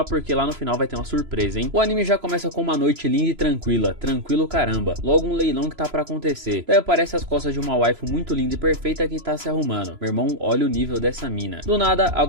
porque lá no final vai ter uma surpresa, hein? O anime já começa com uma noite linda e tranquila. Tranquilo caramba. Logo um leilão que tá pra acontecer. Daí aparece as costas de uma waifu muito linda e perfeita que tá se arrumando. Meu irmão, olha o nível dessa mina. Do nada,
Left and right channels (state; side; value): late; left; 3.0 ms